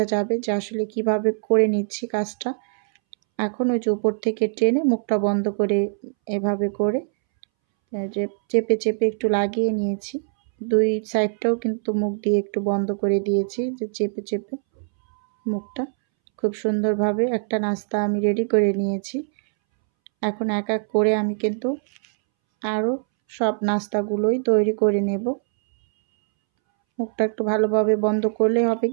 যাবে যে আসলে কিভাবে করে নিচ্ছি কাজটা। এখন ওই যে উপর থেকে টেনে মুখটা বন্ধ করে এভাবে করে যে চেপে চেপে একটু লাগিয়ে নিয়েছি। 2 সাইডটাও কিন্তু মুখ দিয়ে একটু বন্ধ করে দিয়েছি যে চেপে চেপে মুখটা। খুব সুন্দরভাবে একটা নাস্তা আমি রেডি করে নিয়েছি। এখন এক এক করে আমি কিন্তু আরও সব নাস্তাগুলোই তৈরি করে নেব। মুখটা একটু ভালোভাবে বন্ধ করলে হবে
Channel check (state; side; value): silent; left; 64 dB below the other